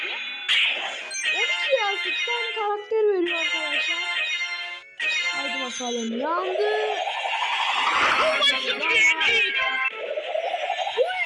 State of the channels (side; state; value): both; identical; correlation 1.00